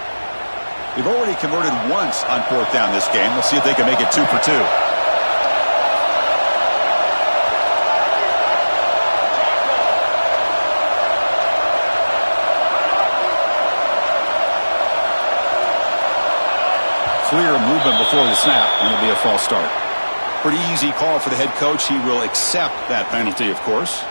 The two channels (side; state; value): both; inverted; correlation -1.00